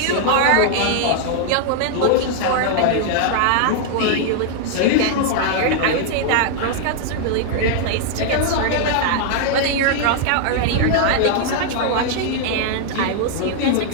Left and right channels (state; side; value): different; both; correlation 0.00